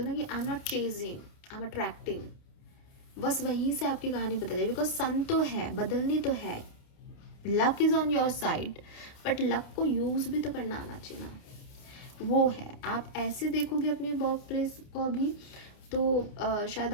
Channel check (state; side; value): late; right; 29 ms